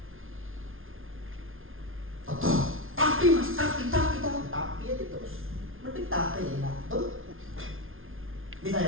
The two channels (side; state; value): left; late; 0.60 ms